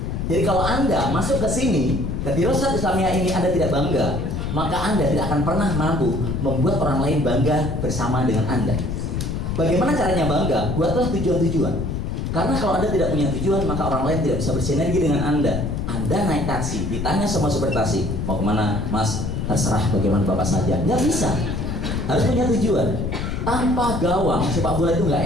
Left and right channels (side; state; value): left; noise; rumble, 3 dB below the sound